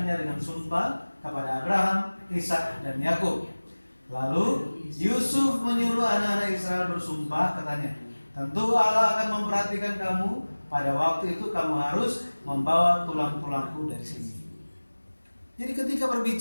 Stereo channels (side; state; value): both; inverted; correlation -1.00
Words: dengan sumpah kepada Abraham, Ishak, dan Yakub. Lalu Yusuf menyuruh anak-anak Israel bersumpah, katanya, tentu Allah akan memperhatikan kamu. Pada waktu itu kamu harus membawa tulang-tulangku dari sini. Jadi ketika